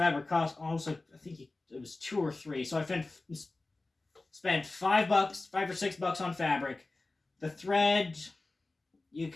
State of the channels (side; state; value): right; quieter; 3.2 dB